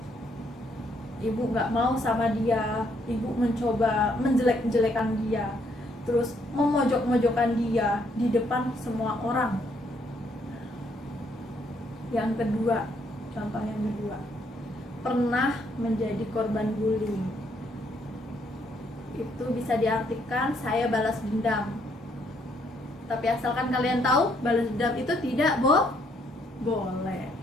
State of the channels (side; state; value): both; normal; correlation 0.70